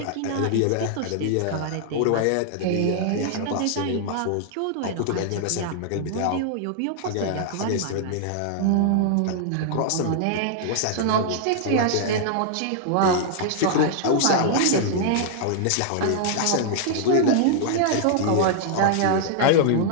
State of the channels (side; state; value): both; different; correlation -0.01